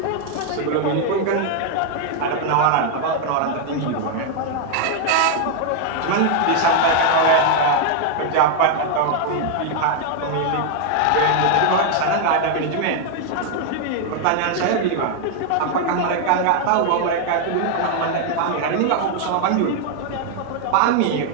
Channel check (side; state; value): both; different; correlation 0.00